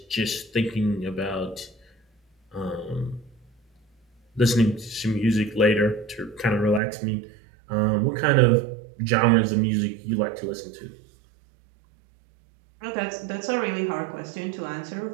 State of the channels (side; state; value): left; drops out; at 6.8 s